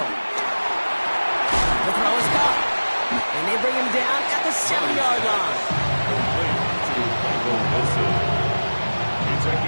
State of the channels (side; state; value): both; inverted; correlation -1.00